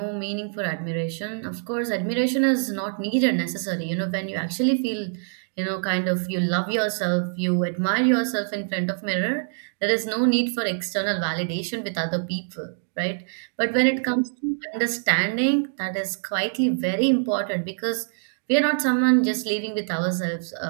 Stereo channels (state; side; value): silent; left; digital silence